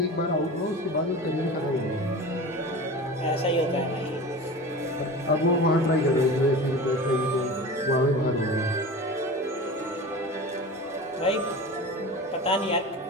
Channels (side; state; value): both; normal; correlation 0.33